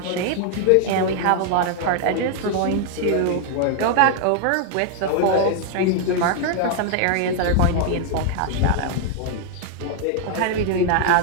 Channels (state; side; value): different; both; correlation 0.00